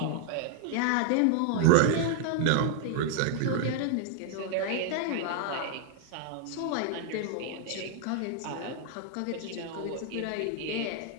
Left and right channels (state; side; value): different; both; correlation 0.00